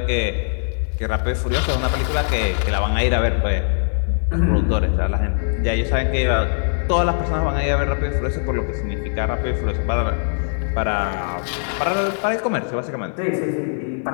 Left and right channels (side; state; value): right; silent; digital silence